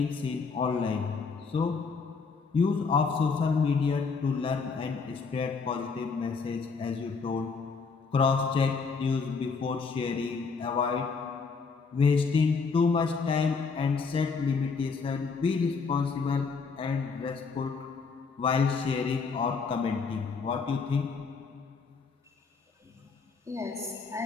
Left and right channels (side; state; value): right; quieter; 4.9 dB